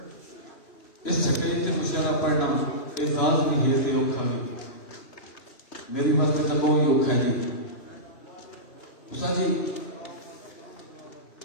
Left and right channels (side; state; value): right; late; 3.0 ms